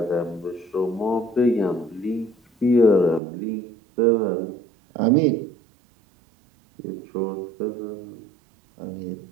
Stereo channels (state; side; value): drops out; left; at 3.2 s